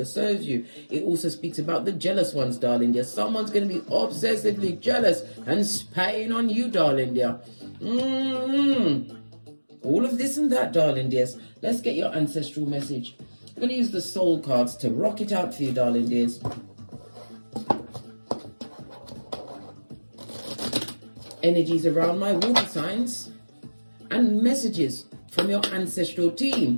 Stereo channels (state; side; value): inverted; both; correlation -1.00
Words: serves you. It also speaks about the jealous ones, darling dear. Someone's going to be obsessively jealous and spying on you, darling dear. All of this and that, darling dears. Let's get your ancestral message. I'm going to use the soul cards to rock it out for you, darling dears. Energies around my water signs and messages from your ancestral